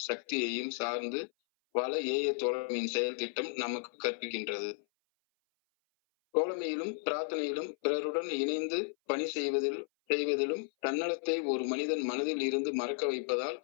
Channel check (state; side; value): silent; right; 55 dB below the other